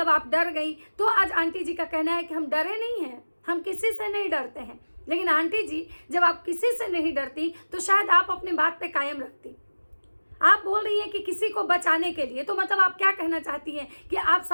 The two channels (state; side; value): inverted; both; correlation -1.00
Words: आप डर गई। तो आज आंटी जी का कहना है कि हम डरे नहीं हैं, हम किसी से नहीं डरते हैं। लेकिन आंटी जी, जब आप किसी से नहीं डरती तो शायद आप अपने बात पे कायम रखती। आप बोल रही हैं कि किसी को बचाने के लिए, तो मतलब आप क्या कहना चाहती हैं कि आप